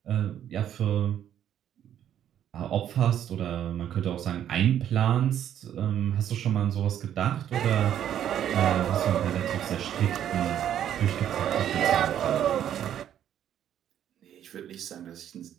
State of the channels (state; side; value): quieter; left; 10.3 dB